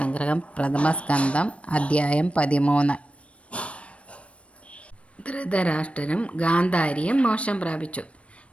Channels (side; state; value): right; late; 0.062 ms